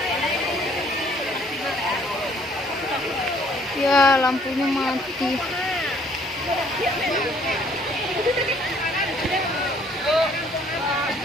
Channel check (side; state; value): both; normal; correlation 0.61